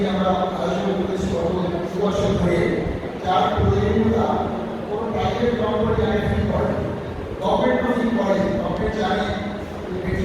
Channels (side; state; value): both; identical; correlation 1.00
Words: আমরা আয়োজন করেছি গত 2 বছর ধরে, যার প্রয়োজনীয়তা কোনো প্রাইভেট কোম্পানি আগে ফিল করে, গভর্নমেন্টও ফিল করে। গভর্নমেন্ট জানে বেটি